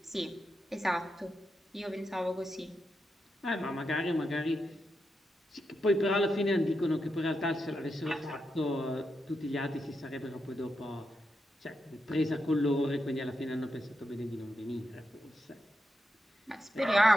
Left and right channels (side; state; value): both; normal; correlation 0.86